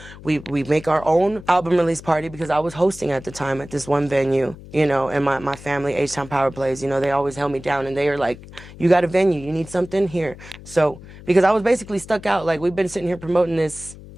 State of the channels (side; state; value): left; noise; hum, 17 dB below the sound